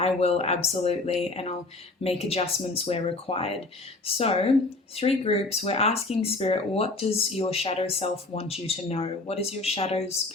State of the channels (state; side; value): quieter; right; 3.2 dB